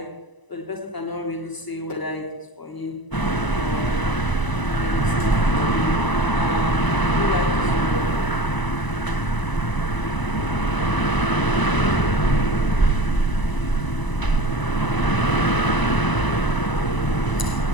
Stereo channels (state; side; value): late; right; 1.0 ms